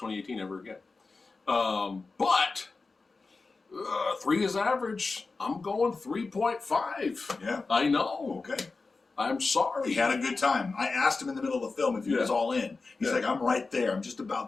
2018 ever again. But 3 is average. I'm going 3.5. Yeah. I know. Okay. I'm sorry. He had a good time. I asked him in the middle of the film if he was all in. He's like, I'm right there. I'm just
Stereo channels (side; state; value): right; quieter; 4.0 dB